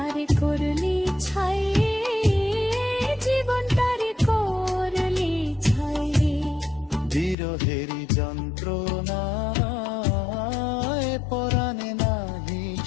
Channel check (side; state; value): right; drops out; at 7.4 s